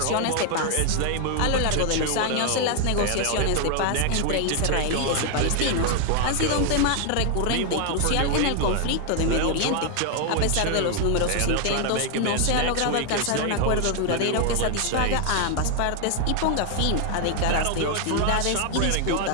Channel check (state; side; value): different; both; correlation 0.00